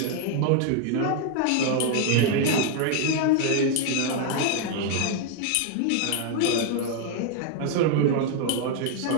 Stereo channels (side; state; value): both; different; correlation 0.00